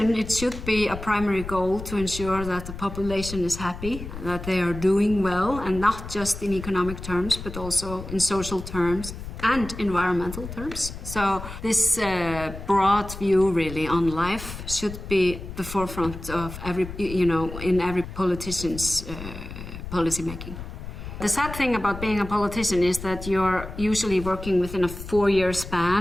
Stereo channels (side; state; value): left; noise; rumble, 10 dB below the sound